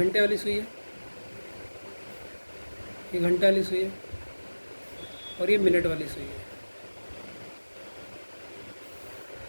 वाली सुई है, ये घंटा वाली सुई है, और ये मिनट वाली सुई है।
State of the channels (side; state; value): both; inverted; correlation -1.00